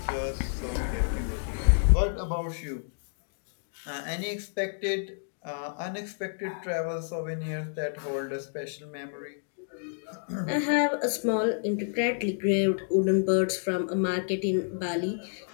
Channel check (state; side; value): silent; right; digital silence